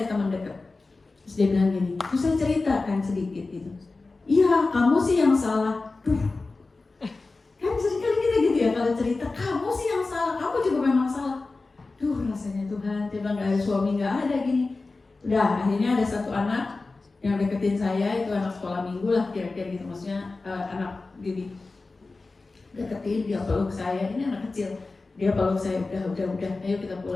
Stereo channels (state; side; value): quieter; right; 3.6 dB